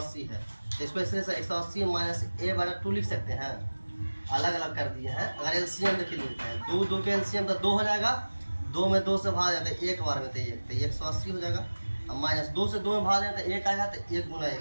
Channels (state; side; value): inverted; both; correlation -1.00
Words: है, तो इसको ऐसे 180 माइनस ए बटा 2 लिख सकते हैं, अलग अलग कर दिए हैं। अगर एलसीएम देखिए लिखते हैं, 2 के एलसीएम तो 2 हो जाएगा, 2 में 2 से भाग जाता है, एक बार में तो 1, तो 180 हो जाएगा। अब माइनस 2 से 2 में भाग जाता है, 1 आएगा, तो 1 गुना 1,